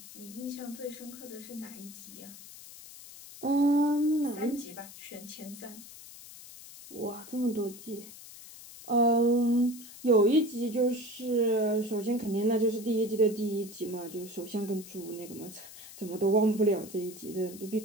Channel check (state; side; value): noise; left; hiss, 16 dB below the sound